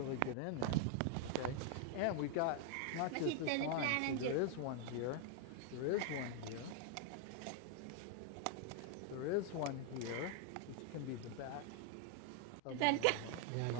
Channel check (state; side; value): different; both; correlation 0.00